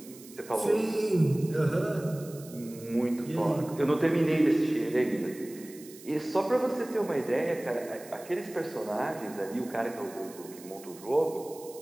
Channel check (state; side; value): noise; right; hiss, 19 dB below the sound